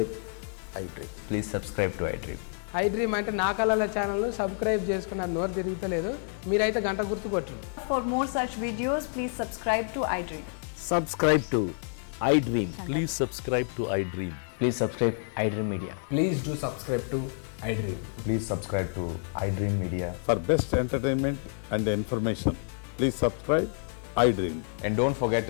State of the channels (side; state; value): right; silent; 59 dB below the other